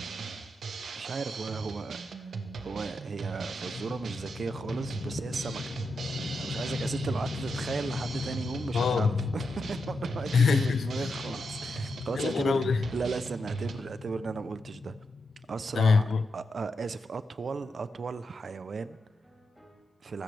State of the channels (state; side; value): normal; both; correlation 0.85